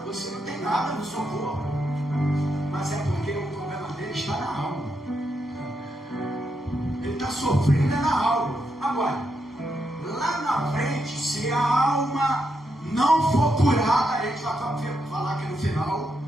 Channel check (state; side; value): normal; both; correlation 0.82